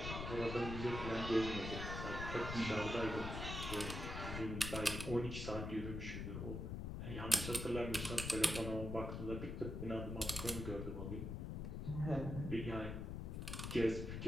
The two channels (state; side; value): noise; left; rumble, 4 dB below the sound